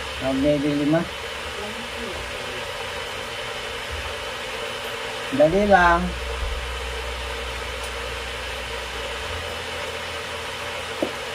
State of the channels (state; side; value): identical; both; correlation 1.00